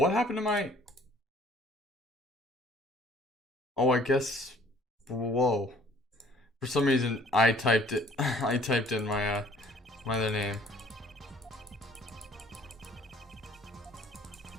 happened to my... Oh, I guess... Whoa. For some reason, I typed it. I typed in my other name.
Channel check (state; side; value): normal; both; correlation 0.56